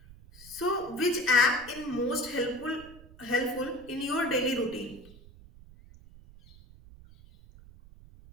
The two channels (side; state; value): right; noise; rumble, 21 dB below the sound